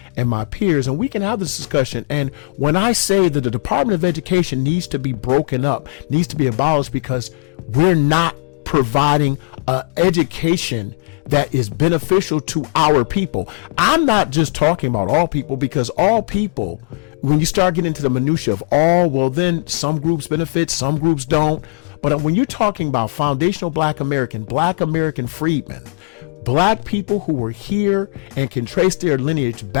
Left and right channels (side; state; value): right; quieter; 31.3 dB